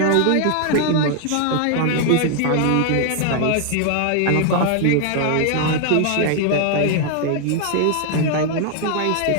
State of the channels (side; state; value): both; different; correlation 0.00